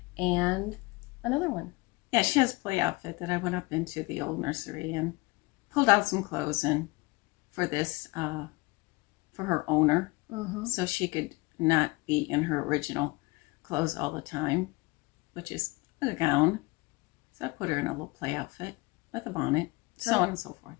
and another one. Yeah, she has a play outfit that I went up into the old nursery and pulled out some clothes and for this, for her owner, so she could not be in her original clothes all the time, which is a gown. So I put her in a little play outfit with a bonnet, so on and so forth.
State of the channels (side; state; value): right; quieter; 24.5 dB